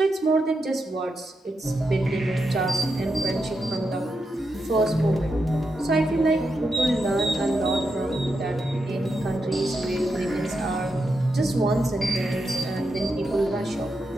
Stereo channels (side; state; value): both; normal; correlation 0.85